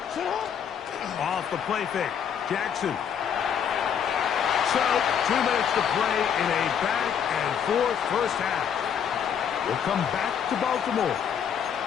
Off the play fake. Jackson. So, 2 minutes to play in a back-and-forth first half. We'll come back to Baltimore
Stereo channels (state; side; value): quieter; right; 8.1 dB